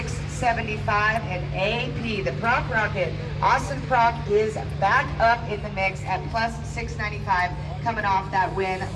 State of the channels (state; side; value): identical; both; correlation 1.00